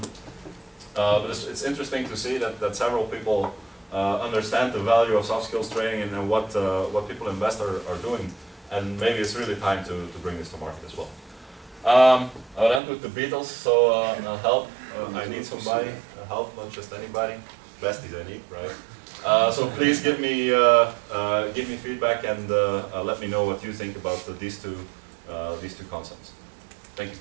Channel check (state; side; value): drops out; left; at 12.8 s